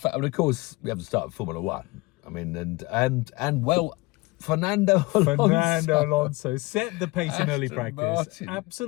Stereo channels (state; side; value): quieter; right; 23.0 dB